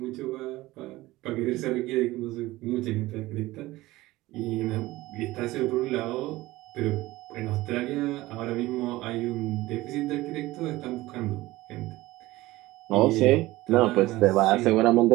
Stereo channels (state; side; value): quieter; left; 18.4 dB